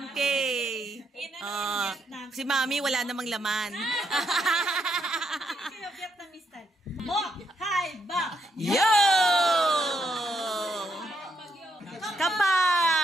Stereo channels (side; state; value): both; normal; correlation 0.77